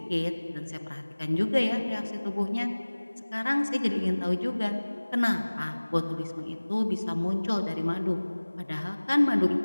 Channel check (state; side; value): inverted; both; correlation -1.00